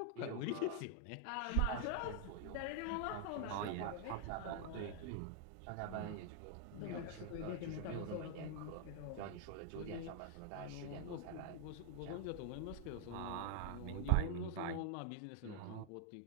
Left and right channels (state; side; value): different; both; correlation 0.00